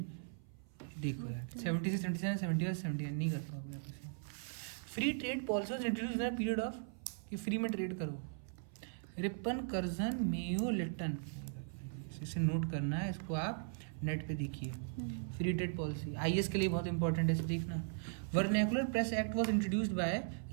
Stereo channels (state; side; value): silent; left; 52 dB below the other